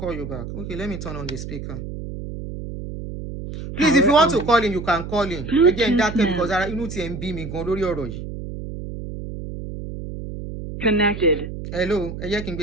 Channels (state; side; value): noise; right; hum, 9 dB below the sound